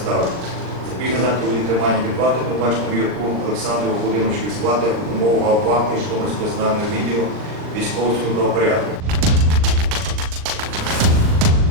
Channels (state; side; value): late; left; 39 ms